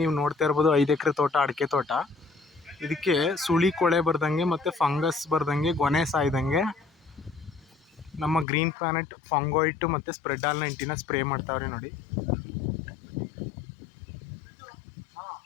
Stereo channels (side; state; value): right; drops out; at 8.5 s